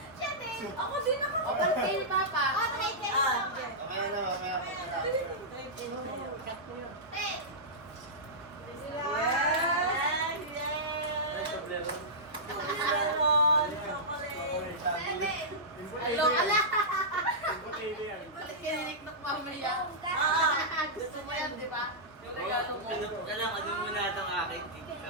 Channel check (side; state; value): both; normal; correlation -0.13